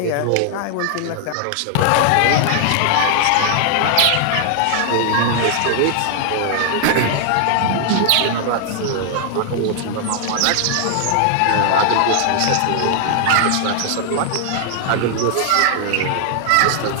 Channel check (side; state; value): both; different; correlation 0.00